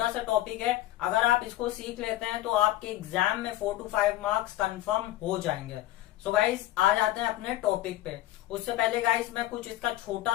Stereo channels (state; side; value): quieter; right; 15.5 dB